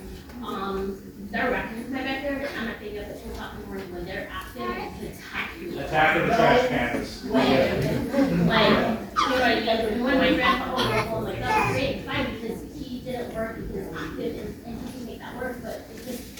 they're wrecking my backyard, and I'm not thinking up at 2 o'clock in the morning when they're active and attacking me. Attacking the trash cans. Like, you know, like, when my grandpa was home, like, that's great, fine, because he didn't work, he was active, and he can make that work, but it just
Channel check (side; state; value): both; identical; correlation 1.00